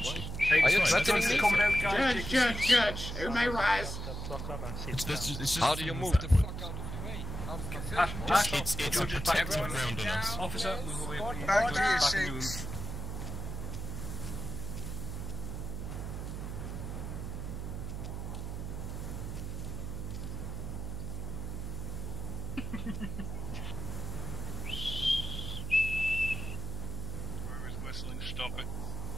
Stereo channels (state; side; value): noise; right; hum, 5 dB below the sound